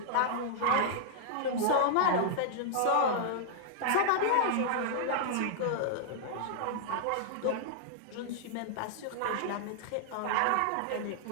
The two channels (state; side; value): different; both; correlation -0.01